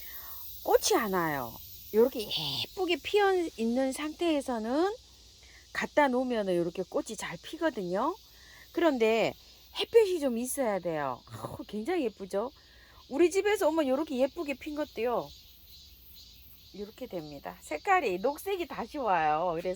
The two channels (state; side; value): identical; both; correlation 1.00